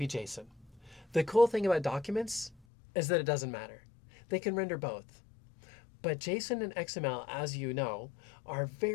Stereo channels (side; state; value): right; drops out; at 2.6 s